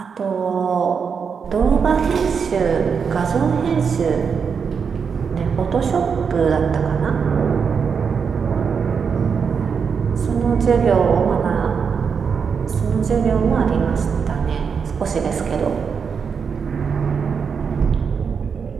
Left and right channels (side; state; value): left; quieter; 6.2 dB